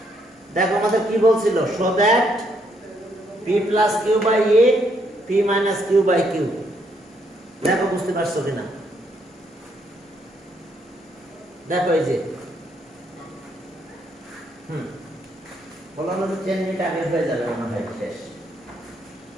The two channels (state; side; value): normal; both; correlation 0.73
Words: দেখো আমাদের কি বলছিল, show that p plus q by a p minus q by q. দেখো বুঝতে পারছো কিনা, দেখো এই যে বললাম 10 মিনিট আগে হয়ে যাবে মনে হয় শেষ।